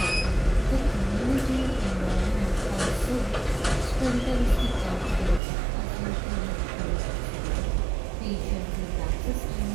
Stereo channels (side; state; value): left; drops out; at 5.4 s